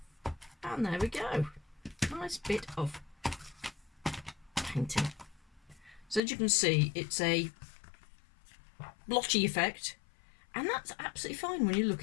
And there we go. Nice bit of painting. So as you can see, it's a blotchy effect, and that's absolutely fine when you're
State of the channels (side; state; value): right; drops out; at 6.2 s